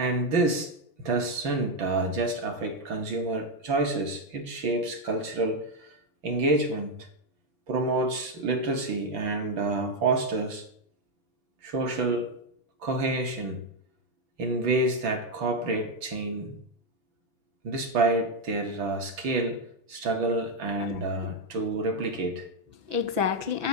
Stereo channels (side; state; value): left; late; 6.0 ms